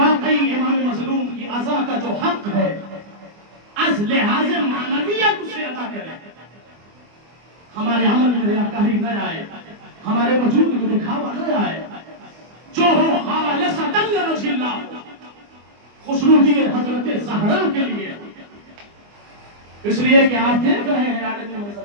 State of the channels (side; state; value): left; late; 24 ms